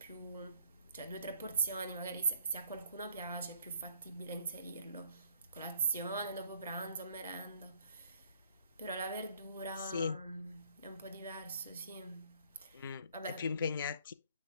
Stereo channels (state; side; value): inverted; both; correlation -0.63